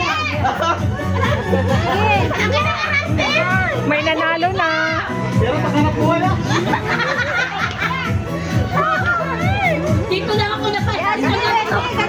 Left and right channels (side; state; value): both; identical; correlation 1.00